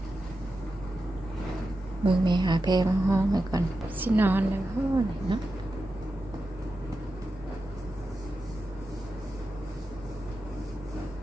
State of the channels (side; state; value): both; normal; correlation 0.90